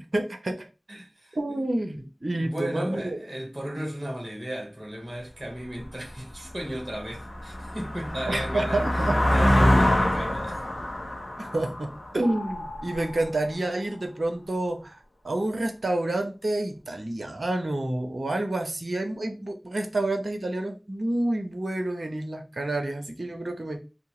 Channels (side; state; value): both; normal; correlation 0.97